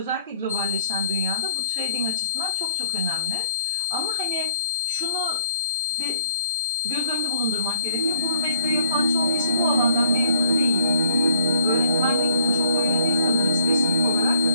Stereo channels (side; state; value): both; inverted; correlation -0.57